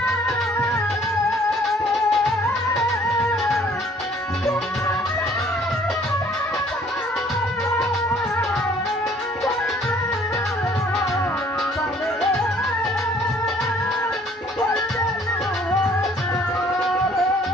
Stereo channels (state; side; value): normal; both; correlation 0.58